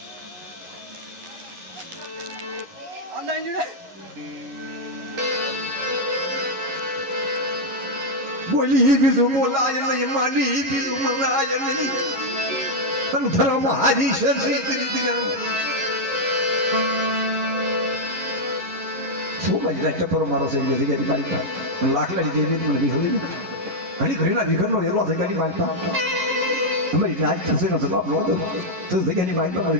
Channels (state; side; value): late; left; 11 ms